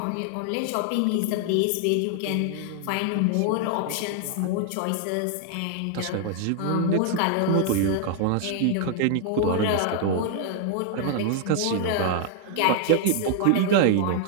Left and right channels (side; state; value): both; different; correlation 0.00